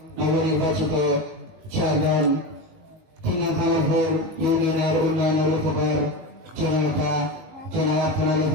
নবনির্বাচিত চেয়ারম্যান, ভাঙরপুর ইউনিয়নের উন্নয়নের উপকার জননেতা জনাব আক্তার আলী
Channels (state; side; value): late; left; 19 ms